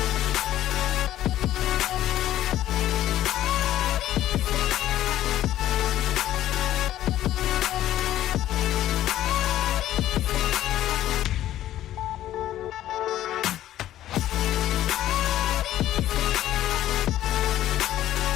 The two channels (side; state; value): right; quieter; 13.1 dB